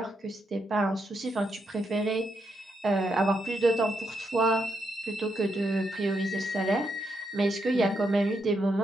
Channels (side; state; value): both; normal; correlation 0.80